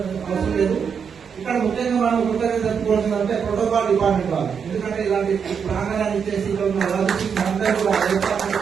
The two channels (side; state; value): left; quieter; 6.7 dB